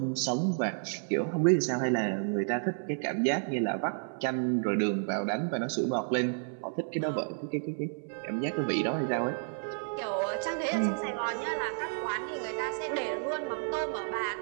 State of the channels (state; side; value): silent; left; 57 dB below the other